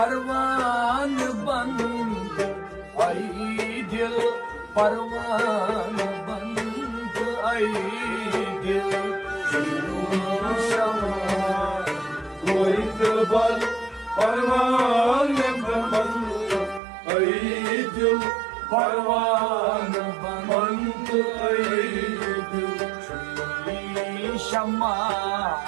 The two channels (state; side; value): drops out; left; at 16.8 s